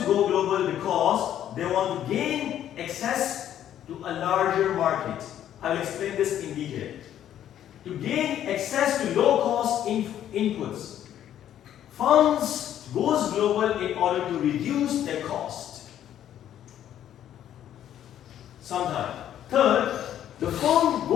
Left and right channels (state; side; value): quieter; right; 10.9 dB